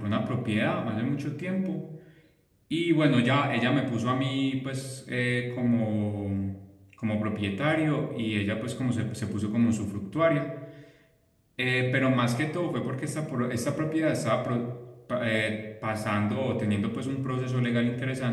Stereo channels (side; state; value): both; identical; correlation 1.00